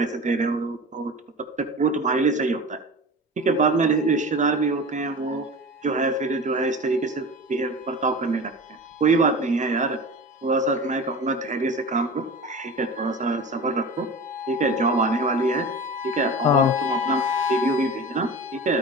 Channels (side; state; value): both; normal; correlation 0.33